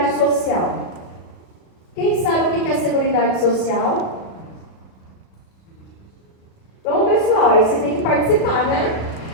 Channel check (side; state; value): right; late; 36 ms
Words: Social. Quem sabe o que é a Seguridade Social? Bom, pessoal, aí vocês têm que participar, né?